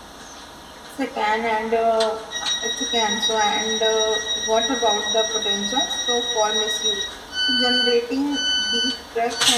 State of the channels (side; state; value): both; identical; correlation 1.00